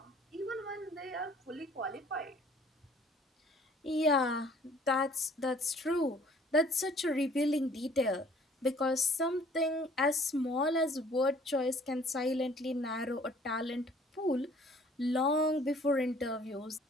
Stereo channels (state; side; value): normal; both; correlation 0.56